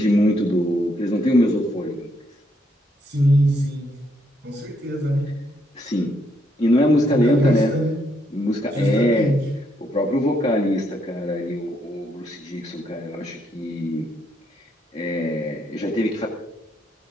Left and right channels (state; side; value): normal; both; correlation 0.75